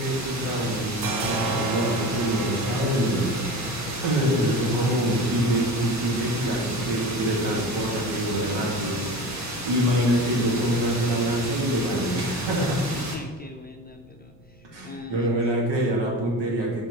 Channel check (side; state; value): both; normal; correlation 0.33